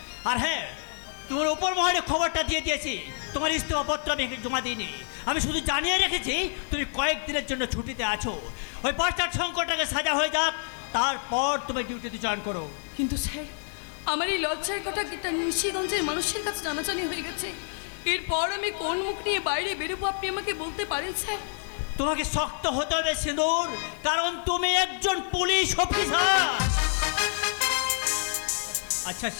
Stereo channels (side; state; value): right; silent; digital silence